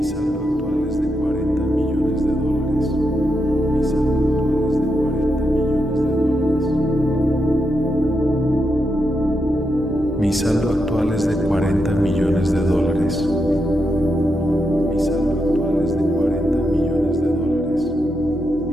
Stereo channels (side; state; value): both; normal; correlation 0.84